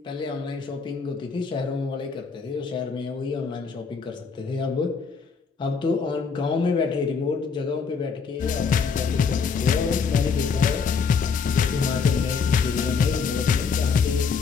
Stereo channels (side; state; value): right; quieter; 5.5 dB